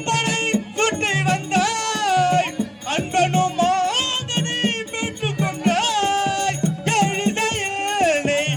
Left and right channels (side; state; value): both; identical; correlation 1.00